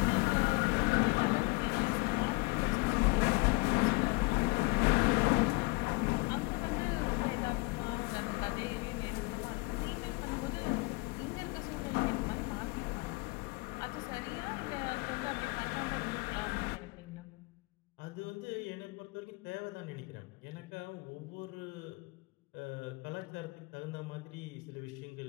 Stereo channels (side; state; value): right; quieter; 25.9 dB